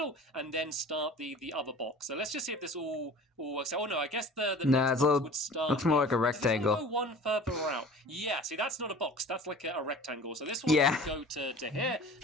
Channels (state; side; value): normal; both; correlation 0.42